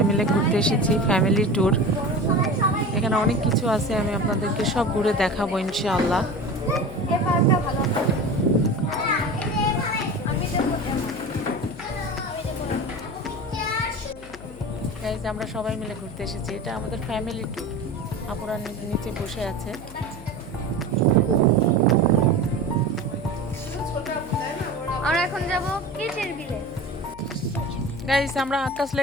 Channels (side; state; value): left; noise; hum, 18 dB below the sound